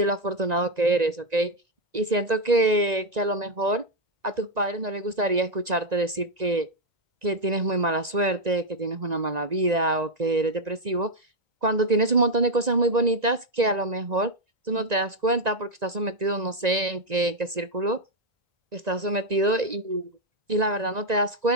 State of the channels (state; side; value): late; left; 1.9 ms